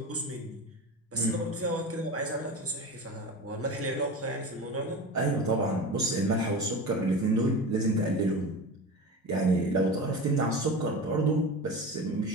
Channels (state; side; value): normal; both; correlation 0.29